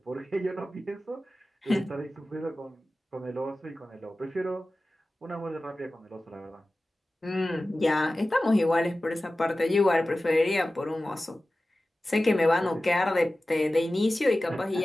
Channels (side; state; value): both; normal; correlation 0.96